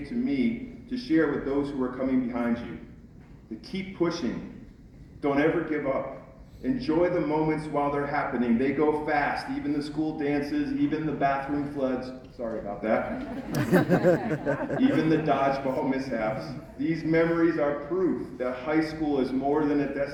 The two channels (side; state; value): both; identical; correlation 1.00